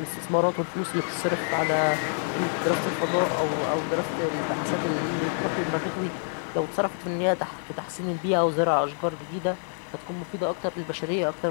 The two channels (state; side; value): silent; right; digital silence